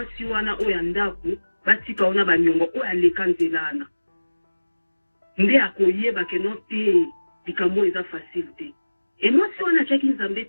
wana oyo ya ndako batika ona banyongo oyo aleka nzela wana nde akoyeba ke no te likambo eza facile te e mwasi wana atiaki nzambe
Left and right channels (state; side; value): inverted; both; correlation -1.00